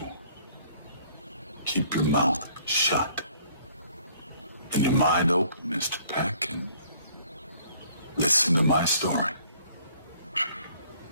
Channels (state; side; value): inverted; both; correlation -0.59